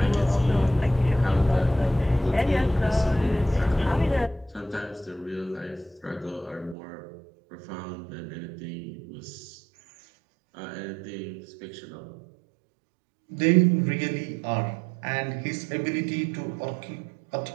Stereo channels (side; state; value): left; drops out; at 6.8 s